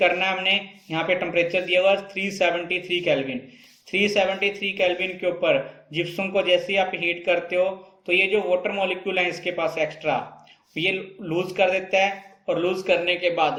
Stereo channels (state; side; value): identical; both; correlation 1.00